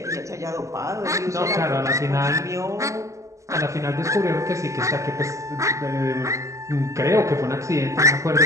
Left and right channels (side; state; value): left; late; 0.15 ms